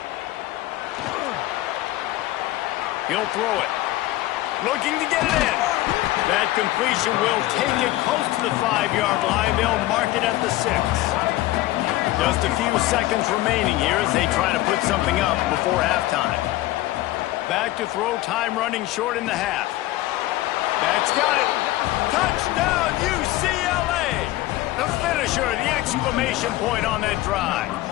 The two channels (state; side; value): quieter; right; 16.7 dB